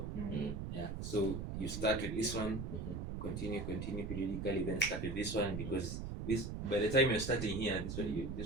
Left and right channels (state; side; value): noise; right; rumble, 5 dB below the sound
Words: Yeah. So you start with this one, continue periodically, then start with this one, because this, by the time you're starting here, this